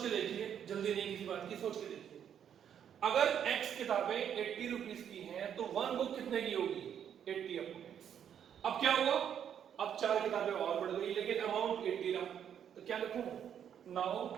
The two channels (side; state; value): left; quieter; 8.9 dB